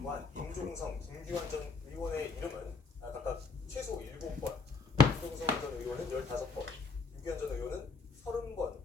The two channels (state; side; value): quieter; right; 4.5 dB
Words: 임종성, 김규환 전 의원의 이름은 각각 최소 7번, 임종성 전 의원은 15번, 김규환 전 의원은 30번